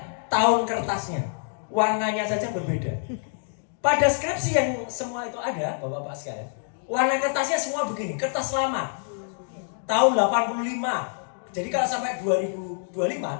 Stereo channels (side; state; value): right; silent; digital silence